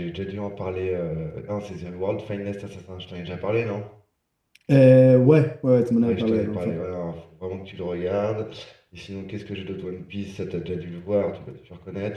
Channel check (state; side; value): identical; both; correlation 1.00